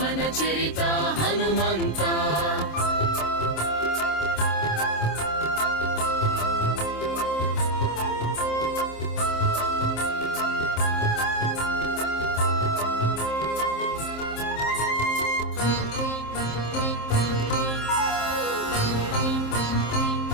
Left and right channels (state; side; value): late; right; 27 ms